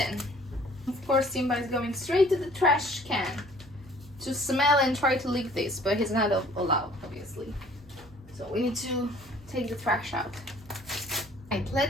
Of course, Simba is going straight to the trash can to smell and try to lick this, but he's not allowed, obviously. So we need to take the trash out. Right,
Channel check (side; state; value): both; normal; correlation 0.55